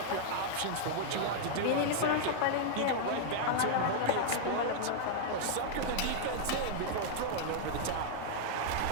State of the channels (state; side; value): different; both; correlation -0.01